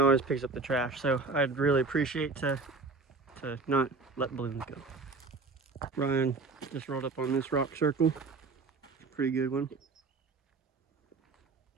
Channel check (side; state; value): left; quieter; 4.1 dB